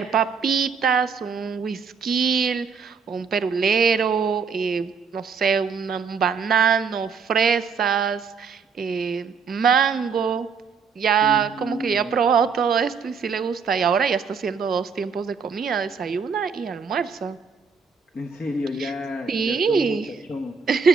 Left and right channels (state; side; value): quieter; left; 5.8 dB